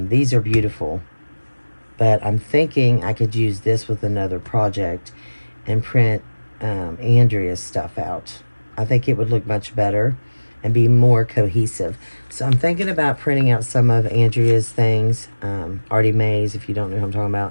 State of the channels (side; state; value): both; inverted; correlation -1.00